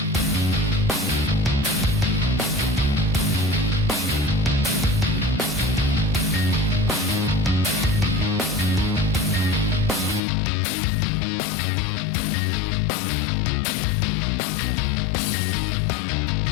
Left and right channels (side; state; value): right; drops out; at 10.2 s